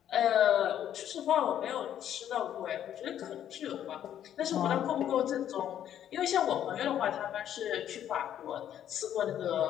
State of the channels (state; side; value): quieter; right; 10.5 dB